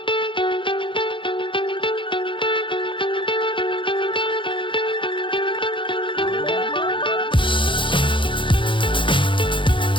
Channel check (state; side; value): late; right; 0.24 ms